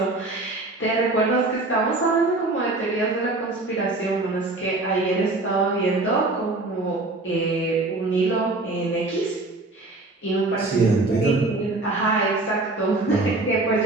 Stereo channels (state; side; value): quieter; left; 3.0 dB